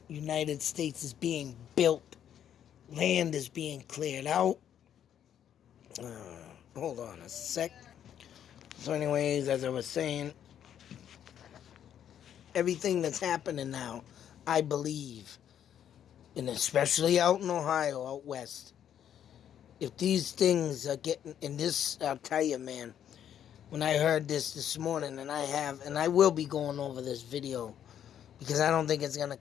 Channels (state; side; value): quieter; right; 9.7 dB